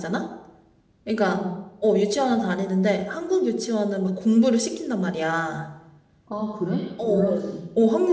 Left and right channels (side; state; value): both; identical; correlation 1.00